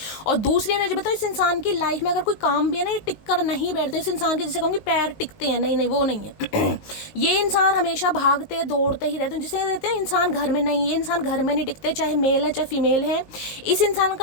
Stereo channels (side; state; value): right; late; 19 ms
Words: और दूसरी एनर्जी बताओ, इस इंसान की लाइफ में अगर कोई काम भी है ना, ये टिक कर नहीं बैठते, इस इंसान के जैसे कहूँगी पैर टिकते हैं, नहीं वो नहीं है। ये इंसान हमेशा भागते दौड़ते ही रहते हैं, जिसे कहते हैं इंसान घर में नहीं, ये इंसान घर में नहीं टिकते, चाहे मेल है चाहे फीमेल है। इस इंसान